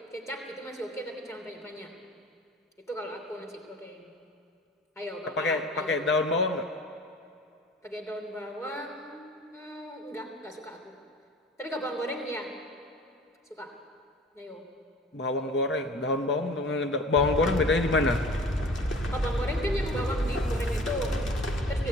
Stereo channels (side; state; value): both; normal; correlation 0.45